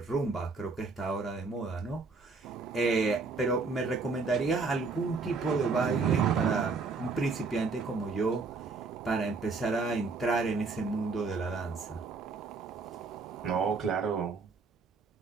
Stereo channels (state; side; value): quieter; left; 4.3 dB